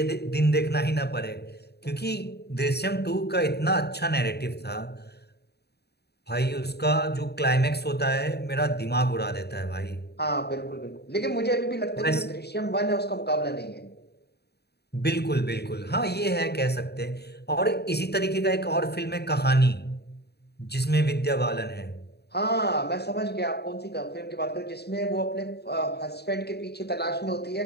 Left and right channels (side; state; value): right; late; 0.48 ms